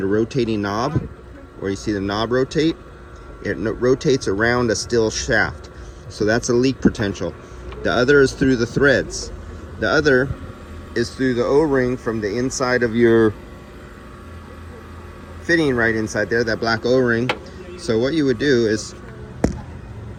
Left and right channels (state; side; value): identical; both; correlation 1.00